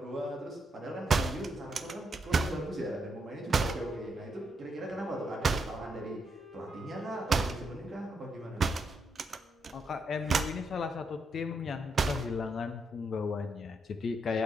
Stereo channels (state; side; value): normal; both; correlation 0.79